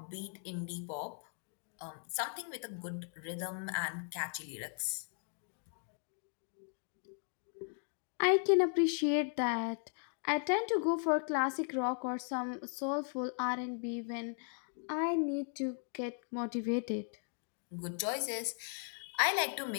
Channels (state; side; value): silent; right; 53 dB below the other